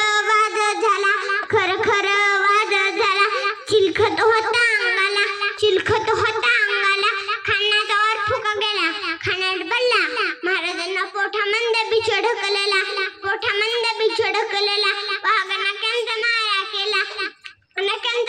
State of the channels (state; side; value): identical; both; correlation 1.00